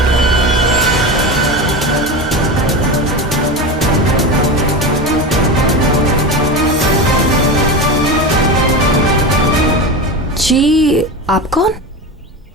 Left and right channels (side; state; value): both; normal; correlation 0.23